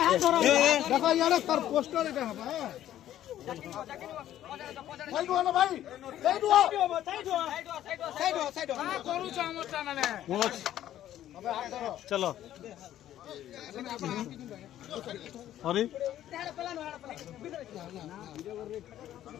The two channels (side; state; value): right; quieter; 12.2 dB